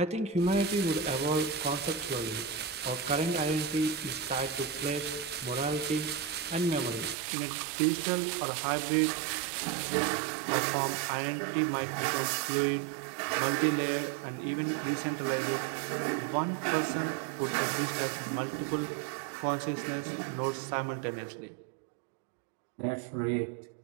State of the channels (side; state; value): left; drops out; at 7.2 s